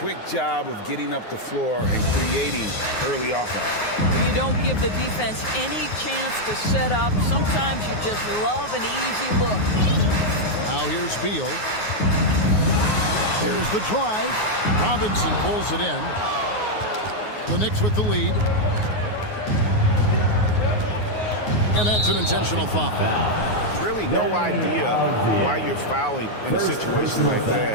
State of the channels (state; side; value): late; right; 9.5 ms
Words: job of getting up the floor and creating early offense. You don't give the defense any chance to set up. Sometimes you just love an easy look. Now here's Beal. There's the drive. Robinson pulls it in. The Knicks with the lead. And that's an intentional foul. Really no idea why you're fouling in a situation like